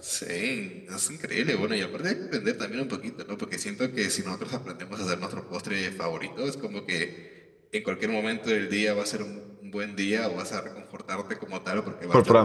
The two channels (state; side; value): identical; both; correlation 1.00